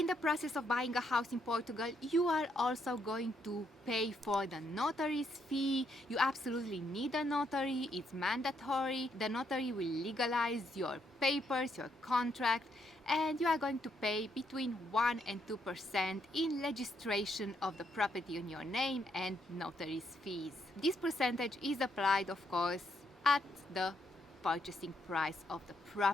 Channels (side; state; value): both; normal; correlation 0.75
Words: the process of buying a house in Portugal, you are also going to pay for the notary's fee. You absolutely need a notary, it's mandatory. The notary will legalize your papers, your contract, and you are going to pay between 1 and 2% in registration of the property in your name and notary's fees. This percentage is applied, of course, at the purchasing price of the